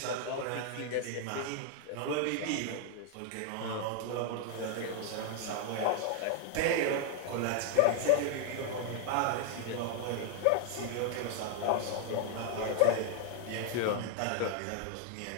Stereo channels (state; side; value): different; both; correlation 0.00